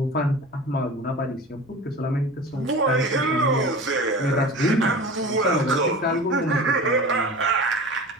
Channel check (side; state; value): both; normal; correlation 0.35